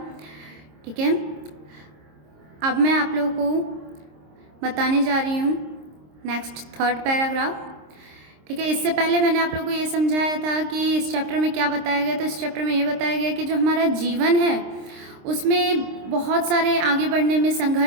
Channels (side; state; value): left; late; 26 ms